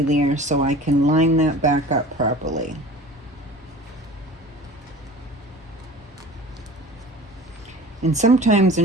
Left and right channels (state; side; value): normal; both; correlation 0.41